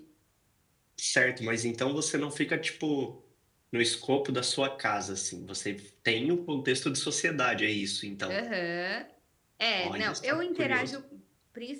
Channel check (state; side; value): identical; both; correlation 1.00